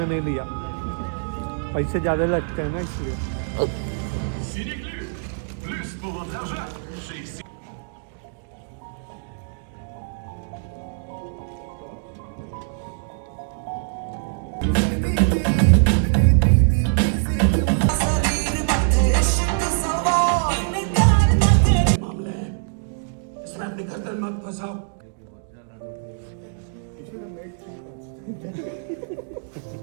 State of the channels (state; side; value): silent; left; digital silence